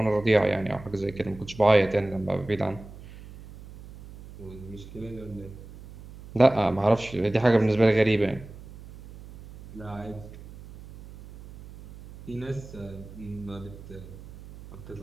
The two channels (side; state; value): right; noise; hum, 17 dB below the sound